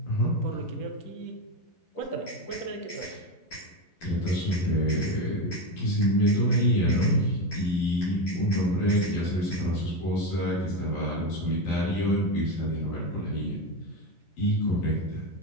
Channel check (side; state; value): right; late; 11 ms